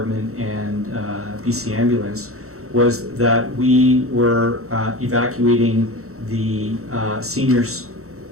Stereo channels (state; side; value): late; left; 0.64 ms